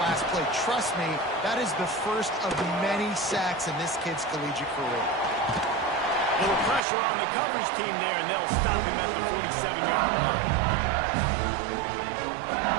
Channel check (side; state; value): left; drops out; at 6.8 s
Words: play. Trust me, that is the first of many sacks in this kid's collegiate career. Little pressure on the coverage team there, and they'll stop him at the 47-yard line.